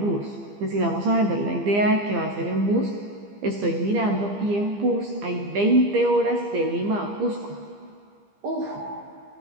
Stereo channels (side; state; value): left; late; 15 ms